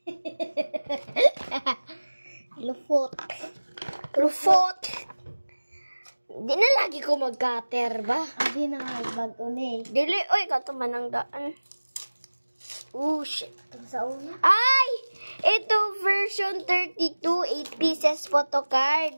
Lufot. Rufot. Di na lagi ko mag-cutter ba? Abi na bago ni. Dili, oy, katuman ang daan. Oh, shit. Sa una. Ay! Ito, version 32, 8 pieces photocard.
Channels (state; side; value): inverted; both; correlation -1.00